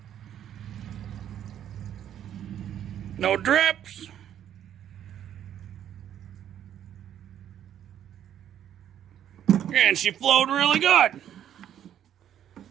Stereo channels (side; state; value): left; quieter; 10.3 dB